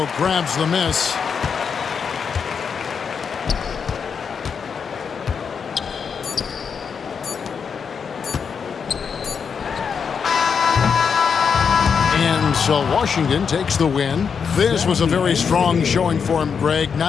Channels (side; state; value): right; quieter; 6.4 dB